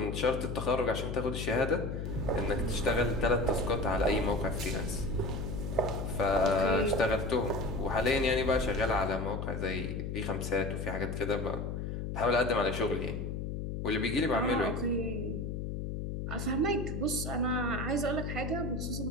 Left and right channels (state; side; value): noise; left; hum, 4 dB below the sound